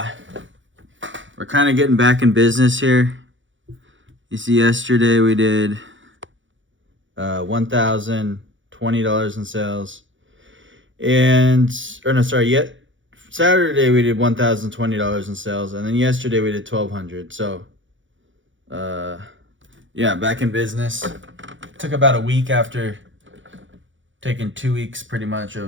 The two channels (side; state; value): left; late; 0.56 ms